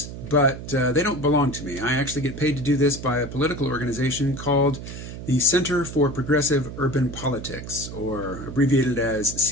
but they don't belong to me. I actually get paid to do this by a political organization called the Center for Progressive Urban Politics, or abbreviated as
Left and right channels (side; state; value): right; noise; hum, 10 dB below the sound